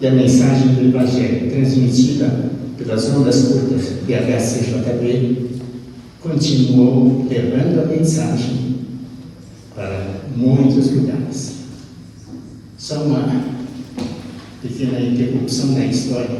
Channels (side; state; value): both; identical; correlation 1.00